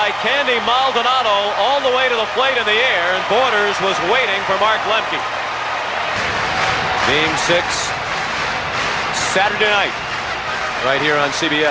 Candy Maldonado all the way to the plate in the air, and Borders was waiting for Mark Lemke. Game 6 Saturday night right here on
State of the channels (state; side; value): identical; both; correlation 1.00